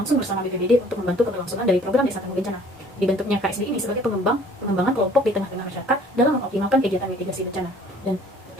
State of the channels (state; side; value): normal; both; correlation 0.54